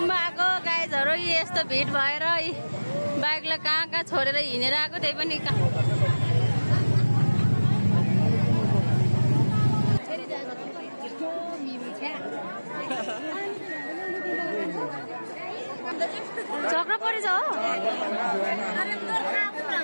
आएको गाइजहरु यस्तो भिड भएर बाइकलाई कहाँ छोडेर हिँडेर आएको त्यही पनि झगडा परेछ हो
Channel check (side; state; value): both; inverted; correlation -1.00